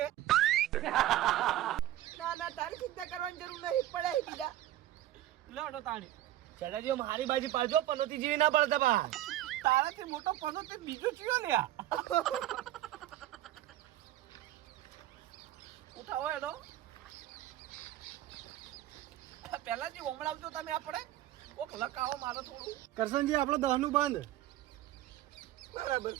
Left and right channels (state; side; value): quieter; left; 13.9 dB